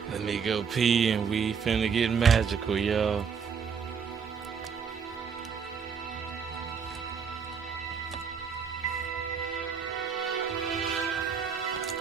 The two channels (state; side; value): quieter; left; 6.5 dB